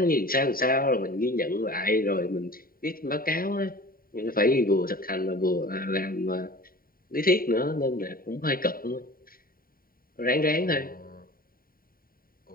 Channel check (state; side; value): late; right; 0.42 ms